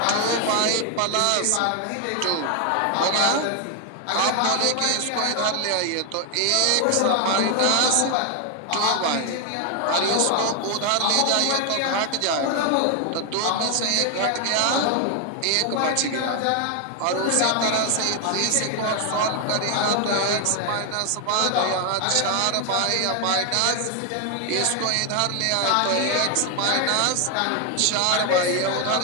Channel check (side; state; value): both; different; correlation 0.01